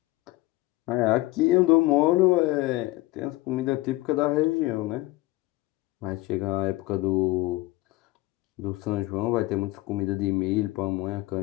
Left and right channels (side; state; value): right; quieter; 20.0 dB